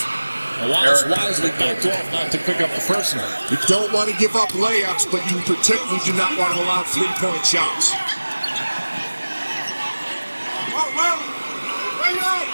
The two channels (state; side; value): inverted; both; correlation -1.00